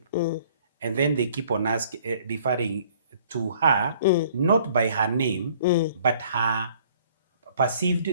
and then they keep on referring to her not by her name, but her perceived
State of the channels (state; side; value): inverted; both; correlation -0.57